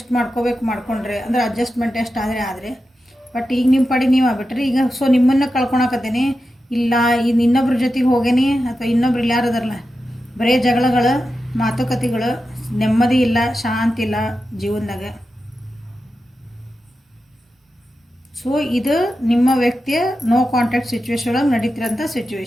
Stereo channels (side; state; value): both; normal; correlation 0.90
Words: ಮಾಡ್ಕೊಂಡ್ರಿ, ಅಂದರೆ ಅಡ್ಜಸ್ಟ್ಮೆಂಟ್ ಎಷ್ಟು ಆದರೆ. ಬಟ್ ಈಗ ನಿಮ್ಮ ಪಡಿ ನೀವು ಆಗ್ಬಿಟ್ರಿ ಈಗ. ಸೊ ನಿಮ್ಮನ್ನು ಕಳ್ಕೊಳಕತ್ತೀನಿ, ಇಲ್ಲ ಇನ್ನೊಬ್ರ ಜೊತೆಗೆ ಹೋಗೇನಿ, ಅಥವಾ ಇನ್ನೊಬ್ರು ಇಲ್ಲ ಯಾರದಾರಲ್ಲ, ಬರೀ ಜಗಳಗಳು, ಮಾತುಕತೆಗಳು, ನೆಮ್ಮದಿ ಇಲ್ಲ, ಶಾಂತಿ ಇಲ್ಲ ಜೀವನದಾಗ. ಸೊ ಇದು ನಿಮ್ಮ ವ್ಯಕ್ತಿಯ ನೋ ಕಾಂಟ್ಯಾಕ್ಟ್ ಸಿಚುವೇಶನ್ ಒಳಗೆ ನಡೀತಿರೋಂಥ